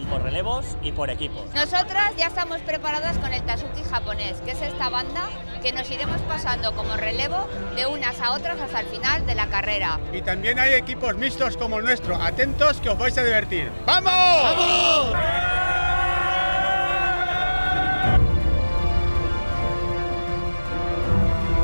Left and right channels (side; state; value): both; inverted; correlation -1.00